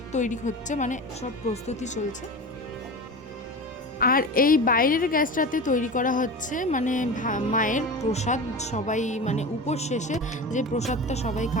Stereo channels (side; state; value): both; normal; correlation 0.29